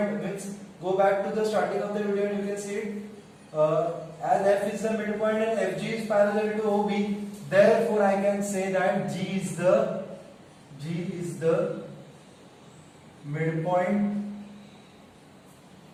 means go back to the starting of the video and you can see it. As F is the midpoint and FG is parallel to OB, therefore I can say that G is the midpoint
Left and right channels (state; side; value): identical; both; correlation 1.00